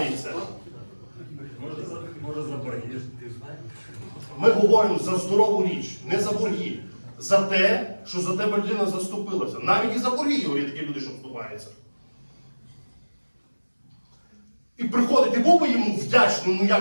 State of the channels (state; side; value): inverted; both; correlation -1.00